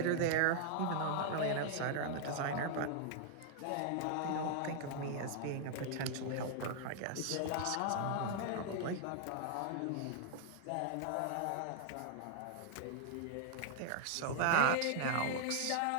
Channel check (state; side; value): different; both; correlation -0.01